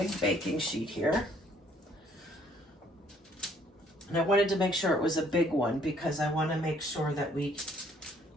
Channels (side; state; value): both; normal; correlation 0.63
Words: baking sheet here. And I wanted to make sure it was a big one because I want to make sure that we